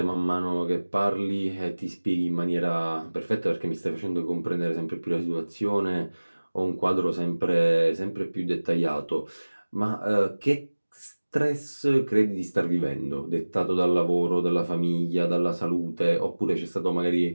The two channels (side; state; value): both; inverted; correlation -1.00